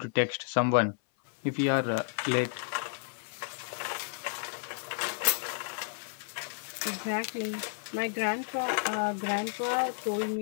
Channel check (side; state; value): right; silent; 57 dB below the other